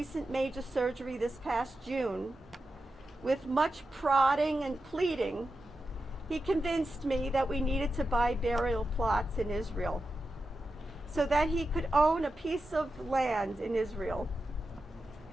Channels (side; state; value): both; normal; correlation 0.90